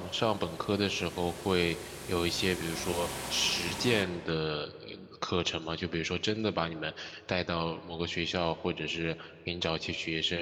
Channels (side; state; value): both; identical; correlation 1.00